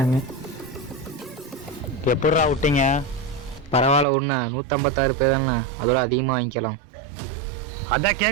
எப்படா விட்டீங்க? பரவாயில்ல ஒன்று 156 பேர்னா அதோட அதிகமாக வாங்கிக்கலாம். அதான்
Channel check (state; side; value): drops out; left; at 4.0 s